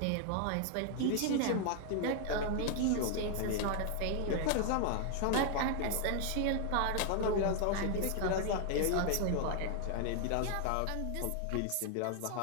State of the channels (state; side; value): different; both; correlation 0.00